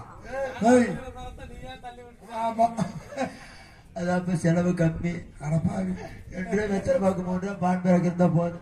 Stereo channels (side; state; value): both; identical; correlation 1.00